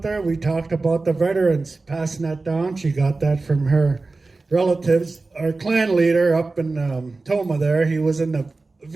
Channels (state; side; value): quieter; left; 3.6 dB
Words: there? We talked about the veterans passing that down. She got that from her relatives. Our clan leader up in Toma there, he was in the